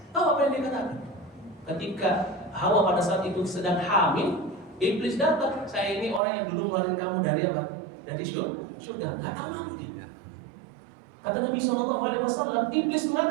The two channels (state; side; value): drops out; left; at 6.2 s